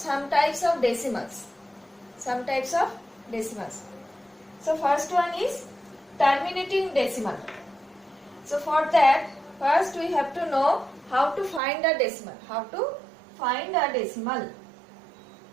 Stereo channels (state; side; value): drops out; left; at 11.6 s